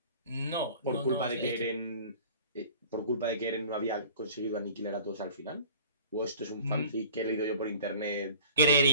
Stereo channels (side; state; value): both; inverted; correlation -0.46